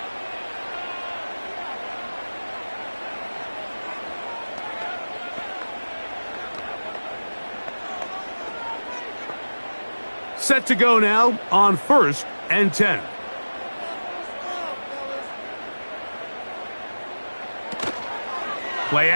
Set to go now on 1st and 10. Play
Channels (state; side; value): inverted; both; correlation -1.00